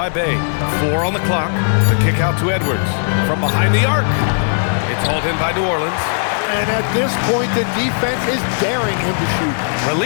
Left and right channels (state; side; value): silent; right; digital silence